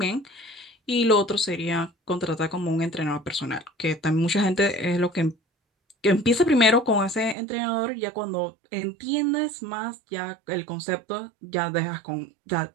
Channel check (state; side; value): drops out; left; at 7.4 s